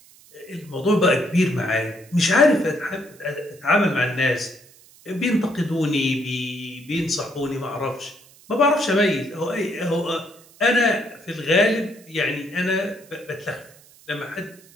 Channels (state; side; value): noise; right; hiss, 25 dB below the sound